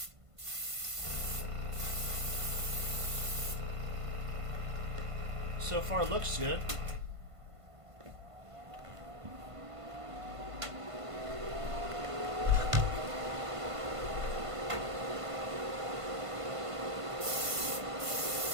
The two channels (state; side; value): late; left; 1.5 ms